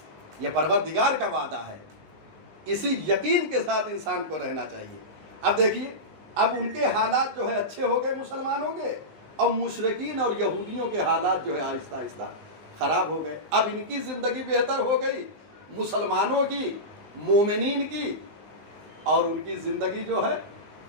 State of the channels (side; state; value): left; late; 19 ms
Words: یہ پروردگار کا وعدہ ہے، اسی یقین کے ساتھ انسان کو رہنا چاہیے۔ اب دیکھیے، اب ان کے حالات جو ہے اچھے ہو گئے مسلمانوں کے، اور مشرکین اور یہودیوں کے حالات جو ہے آہستہ آہستہ خراب ہو گئے۔ اب ان کی زندگی بہتر ہو گئی، مسلمانوں کی، مومنین کی، اور ان کی زندگی جو ہے